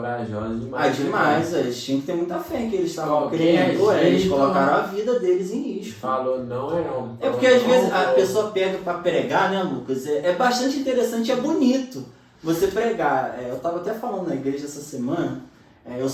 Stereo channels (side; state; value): both; identical; correlation 1.00